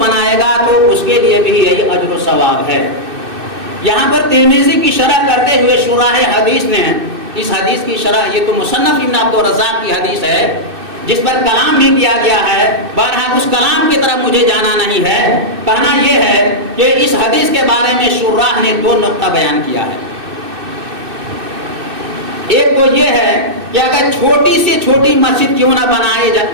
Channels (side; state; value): left; late; 2.6 ms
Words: بنائے گا تو اس کے لیے بھی یہی اجر و ثواب ہے۔ یہاں پر ترمذی کی شرح کرتے ہوئے شراح حدیث نے اس حدیث کی شرح، یہ تو مصنف ابن عبد الرزاق کی حدیث ہے جس پر کلام بھی کیا گیا ہے، بہرحال اس کلام کی طرف مجھے جانا نہیں ہے، کہنا یہ ہے کہ اس حدیث کے بارے میں شراح نے 2 نقطہ بیان کیا ہے۔ ایک تو یہ ہے کہ اگر چھوٹی سے چھوٹی مسجد کیوں نہ